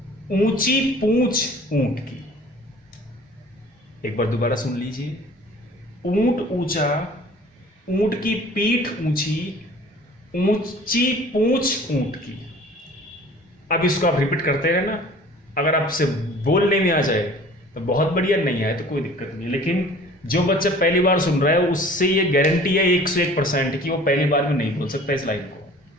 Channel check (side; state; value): both; normal; correlation 0.48